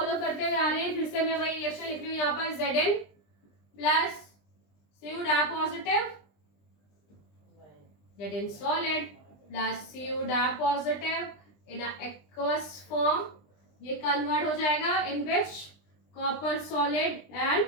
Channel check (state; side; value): late; right; 20 ms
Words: करते हुए आ रहे हैं. फिर से मैं वही रिएक्शन लिख रही हूँ यहाँ पर Zn plus Cu dye positive Zn solid plus Cu dye positive in aqueous form. ये कन्वर्ट हो जाएगा in which copper solid and